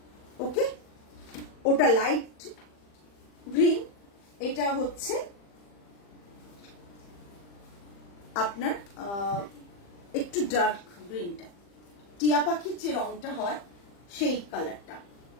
ওকে। ওটা লাইট গ্রিন, এটা হচ্ছে আপনার একটু ডার্ক গ্রিনটা, টিয়া পাখির যে রংটা হয় সেই কালারটা,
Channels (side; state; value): right; late; 40 ms